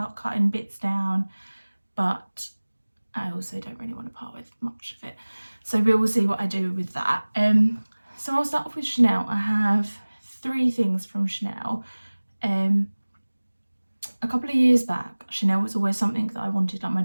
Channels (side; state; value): both; inverted; correlation -1.00